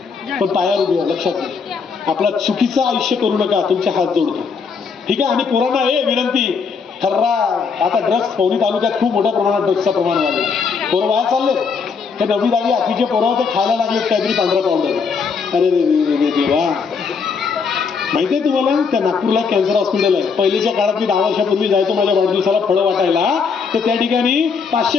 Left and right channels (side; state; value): right; quieter; 5.5 dB